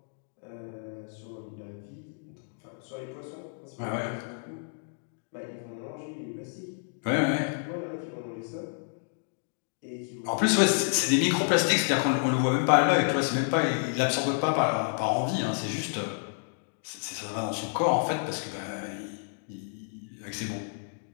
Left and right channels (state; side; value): silent; right; digital silence